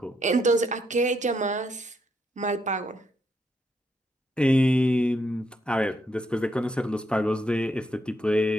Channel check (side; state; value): both; normal; correlation 0.77